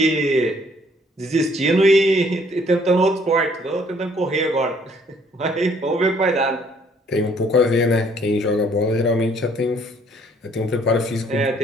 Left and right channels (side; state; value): both; normal; correlation 0.62